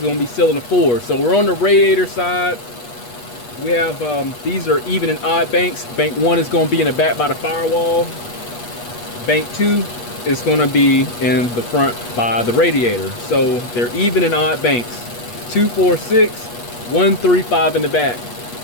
to be cylinder 4. So we're on the radiator side. We have these are even and odd banks. Bank 1 is going to be in the back by the firewall. Bank 2 is going to be in the front by the radiator. So they're even and odd banks. 2, 4, 6, 1, 3, 5 in the back.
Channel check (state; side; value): late; right; 8.3 ms